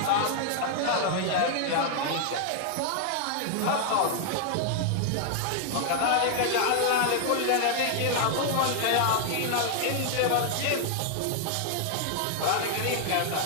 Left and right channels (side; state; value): both; different; correlation 0.00